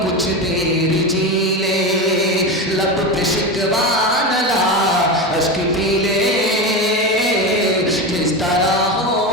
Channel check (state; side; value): normal; both; correlation 0.20